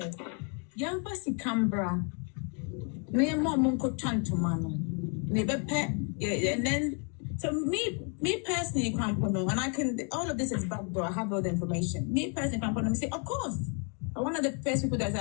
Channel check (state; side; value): quieter; right; 38.7 dB